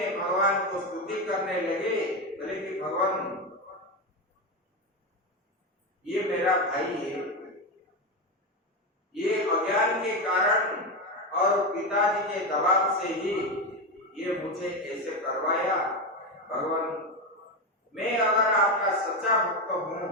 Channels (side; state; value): both; normal; correlation 0.13